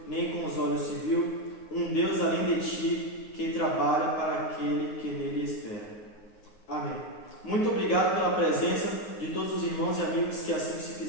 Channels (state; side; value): late; right; 9.6 ms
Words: nem com os olhos se viu, um Deus além de ti, que trabalha para aquele que nele espera. Amém. Muito obrigado pela presença de todos os irmãos e amigos que assim se